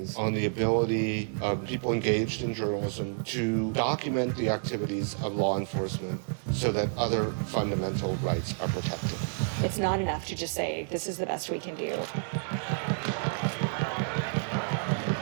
on the ability of people engaged in journalism to document the activities of law enforcement so that other fundamental rights are protected. It's not enough to just say, this is the best we can do.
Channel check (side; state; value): left; silent; digital silence